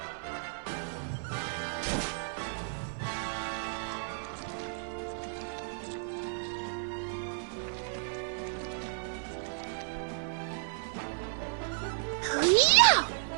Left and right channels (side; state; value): left; silent; 56 dB below the other